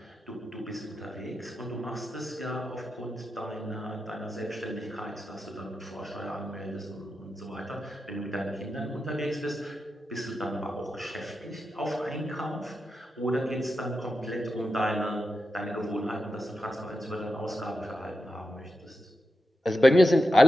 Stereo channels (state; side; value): normal; both; correlation 0.89